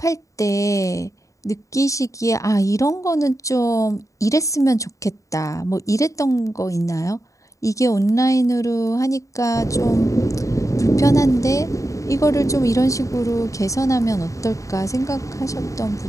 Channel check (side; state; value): right; late; 0.16 ms